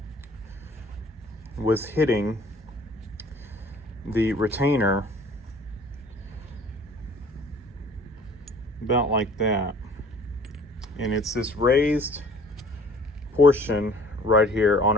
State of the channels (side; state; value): both; normal; correlation 0.51